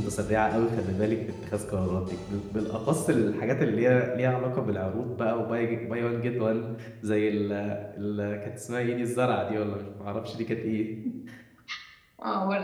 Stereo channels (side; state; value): both; identical; correlation 1.00